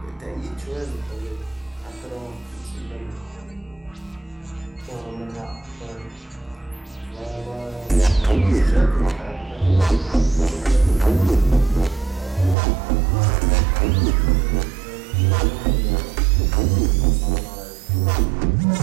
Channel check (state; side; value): drops out; left; at 12.6 s